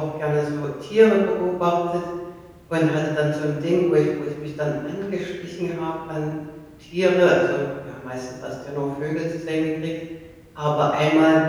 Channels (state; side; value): identical; both; correlation 1.00